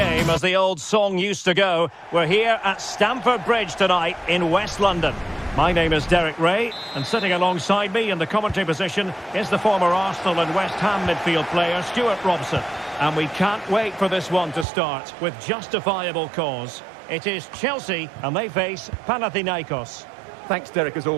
as the old song used to go. We're here at Stamford Bridge tonight in West London. My name is Derek Ray, and sitting alongside me in the commentary position is the former Arsenal and West Ham midfield player, Stuart Robson. And we can't wait for this one to start with justifiable cause. It is Chelsea, and they face Panathinaikos. Thanks, Derek, as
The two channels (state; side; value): drops out; left; at 14.7 s